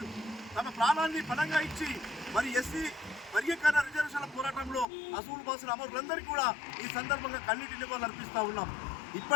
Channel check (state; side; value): drops out; right; at 4.9 s